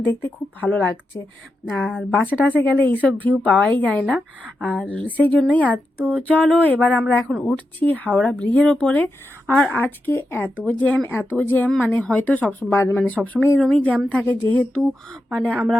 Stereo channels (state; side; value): normal; both; correlation 0.88